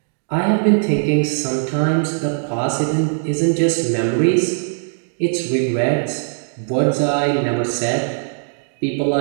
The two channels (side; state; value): left; silent; digital silence